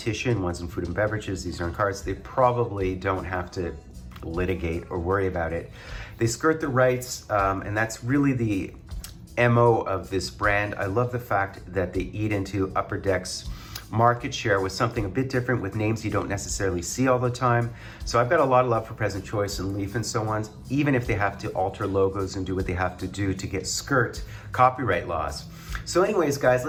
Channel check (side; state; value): both; identical; correlation 1.00